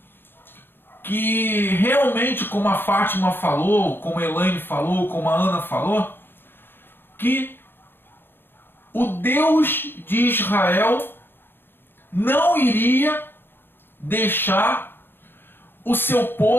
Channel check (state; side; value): late; right; 0.10 ms